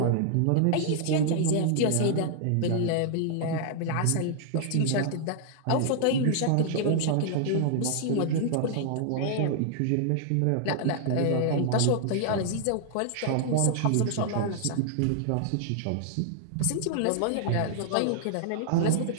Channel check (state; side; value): different; both; correlation -0.01